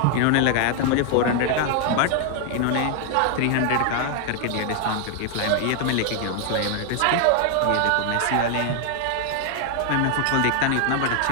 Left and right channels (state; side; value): different; both; correlation 0.00